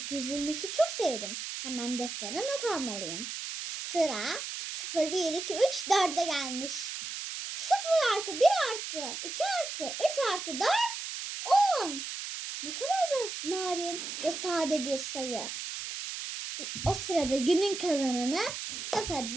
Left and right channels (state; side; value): noise; right; hiss, 6 dB below the sound